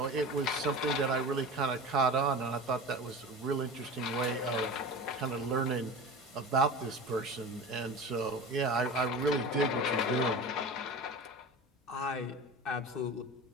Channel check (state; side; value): normal; both; correlation 0.32